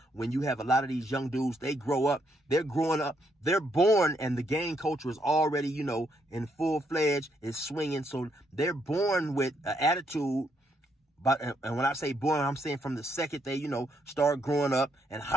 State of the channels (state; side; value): normal; both; correlation 0.75